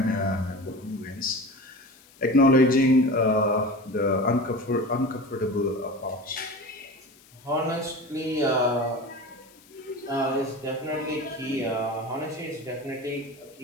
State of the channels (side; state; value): left; noise; hiss, 26 dB below the sound